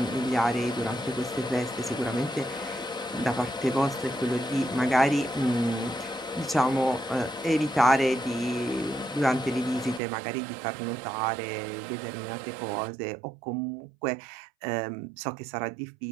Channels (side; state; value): left; drops out; at 10.0 s